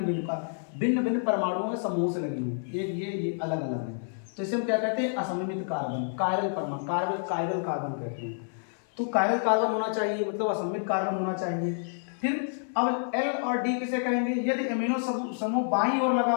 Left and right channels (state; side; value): silent; right; 57 dB below the other